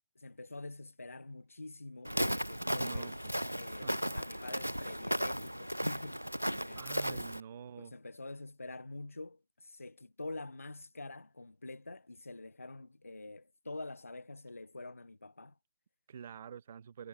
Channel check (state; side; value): inverted; both; correlation -0.95